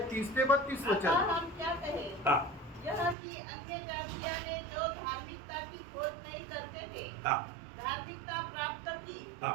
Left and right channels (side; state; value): left; drops out; at 3.2 s